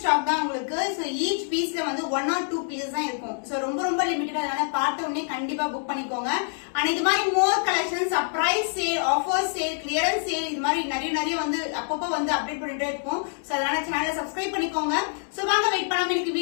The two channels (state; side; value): silent; right; 61 dB below the other